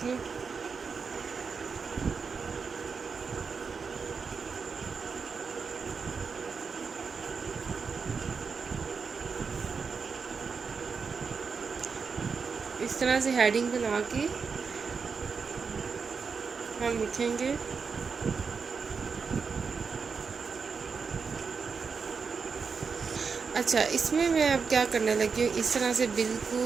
लूँ। इस तरह से हेडिंग बना के हम लिखेंगे। अच्छा, इसमें मैं अब क्या करने लगी हूँ, इस तरह से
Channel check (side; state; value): left; quieter; 5.4 dB